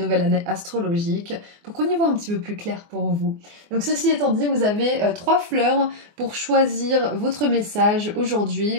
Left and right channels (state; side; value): late; left; 24 ms